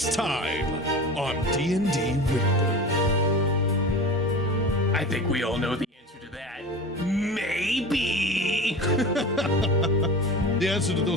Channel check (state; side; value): normal; both; correlation 0.33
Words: time on D&D Wyndburgh. I think we all know the answer to that. Maybe. The answer to